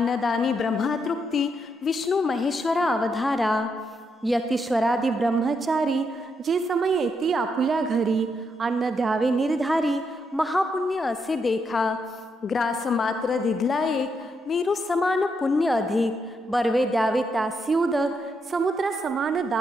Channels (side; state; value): both; normal; correlation 0.79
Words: ब्रह्मा तृप्ती विष्णू महेश्वरा अवधारा, यतीश्वरादी ब्रह्मचारी जे समय येती आपुल्या घरी, अन्न द्यावे निर्धारी महापुण्य असे देखा, ग्रास मात्र दिधला एक मेरू समान पुण्य अधिक, बर्वे द्यावे त्यासी उदक समुद्र समान